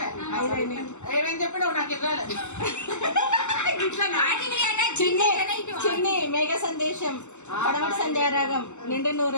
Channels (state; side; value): late; right; 0.83 ms